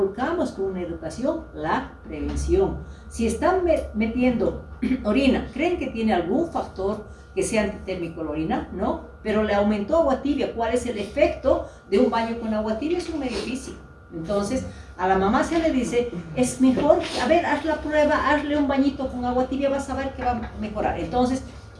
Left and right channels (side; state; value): both; identical; correlation 1.00